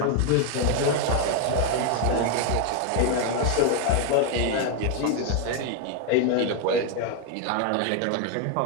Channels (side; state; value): both; different; correlation 0.01